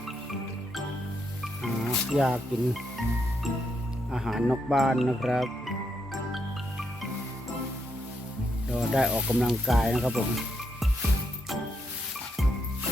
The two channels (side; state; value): both; normal; correlation 0.80